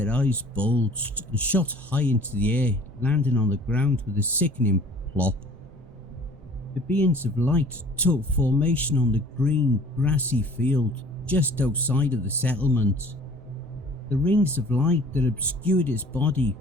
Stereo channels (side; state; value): both; normal; correlation 0.50